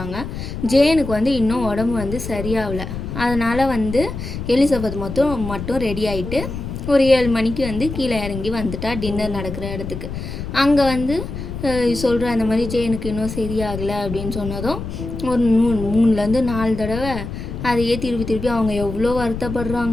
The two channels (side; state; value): left; noise; rumble, 7 dB below the sound